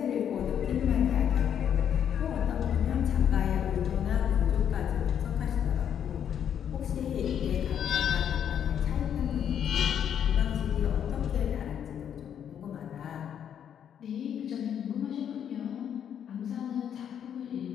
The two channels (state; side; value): quieter; right; 8.9 dB